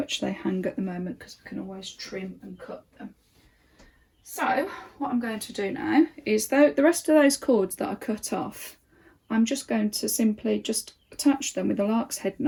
they hang at the moment because we can always trim and cut them. So what I'm going to do now is, though the rest of those cords that I cut off, I'm just going to simply just attach them with a lark's head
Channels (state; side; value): identical; both; correlation 1.00